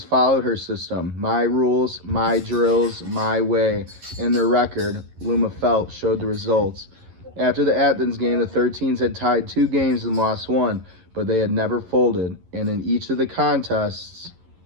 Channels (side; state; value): left; late; 11 ms